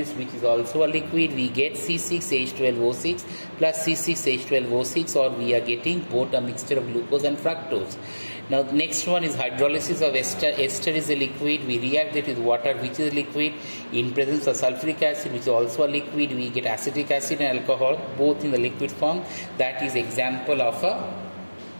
which is also a liquid. We get C6H12O6 plus C6H12O6, or we are getting both a mixture of glucose and fructose. Now next one is hydrolysis of ester. Ester is a liquid. We react it with water which is liquid. In presence of sulfuric acid which is also a liquid, we get acetic acid and alcohol both in the liquid form. That is example of a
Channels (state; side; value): inverted; both; correlation -1.00